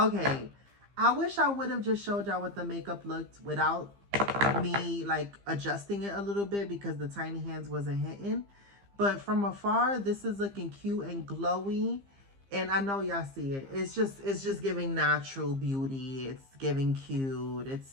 I wish I would have just showed y'all what the makeup looked without me like adjusting it a little bit, because the tiny hands wasn't hitting. But from afar, this is looking cute and glowy. And I know y'all see it. It's just giving natural beauty. It's giving cute.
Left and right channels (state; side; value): late; left; 15 ms